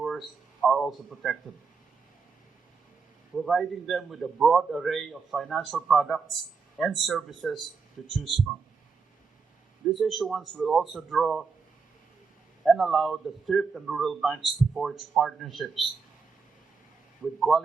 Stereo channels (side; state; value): left; quieter; 5.1 dB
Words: are also protected, providing them with a broad array of financial products and services to choose from. This issuance will also draw and allow the thrift and rural banks to forge partnerships with